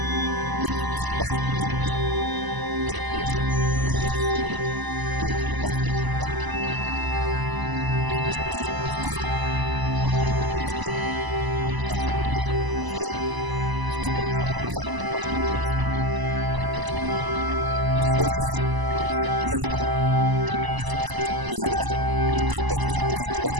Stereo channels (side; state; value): left; late; 1.0 ms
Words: तीर्थ के विकास के लिए भी एक नैमिष तीर्थ विकास परिषद का गठन किया जाए। उस क्रम में प्रस्ताव शासन को भेजा गया है और शासन में उसका परीक्षण हो रहा है और बहुत जल्दी उस पर भी अंतिम मुहर लगने वाली है। ईश्वरीय जो शक्तियां हैं उनको कैसे मजबूत किया जाए, उनका कैसे अपने